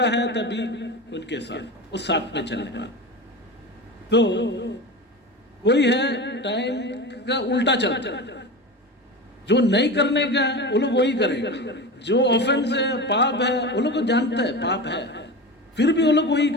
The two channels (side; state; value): both; normal; correlation 0.27